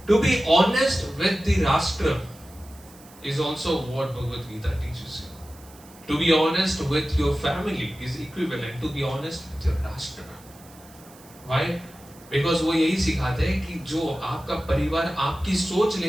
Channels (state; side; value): noise; right; hiss, 24 dB below the sound